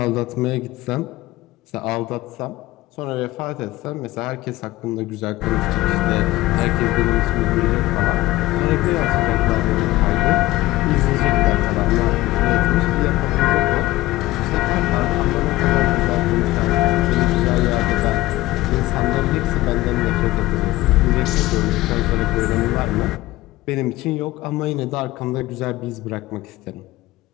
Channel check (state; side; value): quieter; right; 17.8 dB